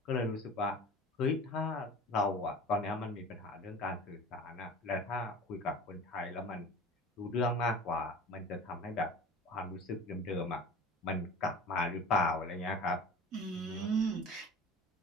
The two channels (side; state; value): both; normal; correlation 0.38